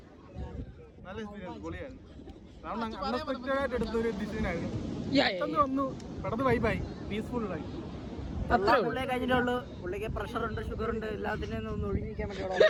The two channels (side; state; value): both; identical; correlation 1.00